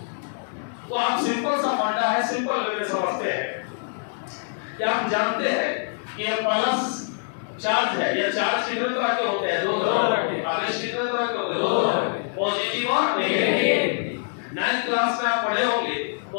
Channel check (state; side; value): silent; right; digital silence